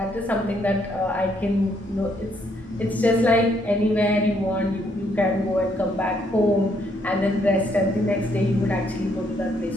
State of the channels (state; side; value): normal; both; correlation 0.71